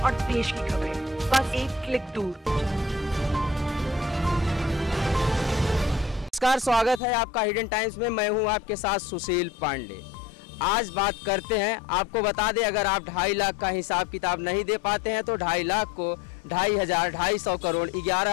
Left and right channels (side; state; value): right; drops out; at 7.0 s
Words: और देश की खबरें बस एक क्लिक दूर। नमस्कार, स्वागत है आपका हिडन टाइम्स में। मैं हूं आपके साथ सुशील पांडे। आज बात करते हैं, आपको बता दें, अगर आप 2.5 लाख का हिसाब किताब नहीं दे पाते हैं तो 2.5 लाख को 2,500 करोड़